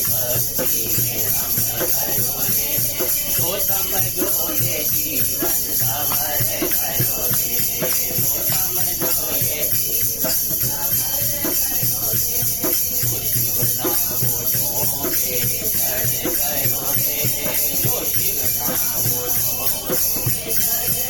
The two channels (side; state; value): left; noise; rumble, 13 dB below the sound